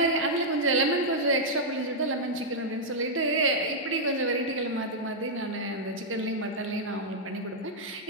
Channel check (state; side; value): normal; both; correlation -0.06